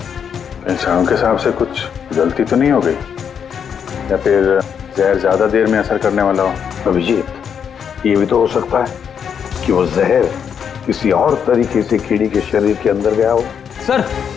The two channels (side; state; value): right; quieter; 7.6 dB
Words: इंसानों के हिसाब से कुछ गलती तो नहीं हो गई, या फिर जहर ज्यादा देर में असर करने वाला हो? अभिजीत, ये भी तो हो सकता है कि वो जहर किसी और तरीके से कीड़ी के शरीर के अंदर गया हो। सर,